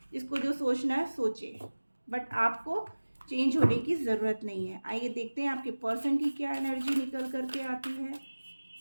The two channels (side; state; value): both; inverted; correlation -1.00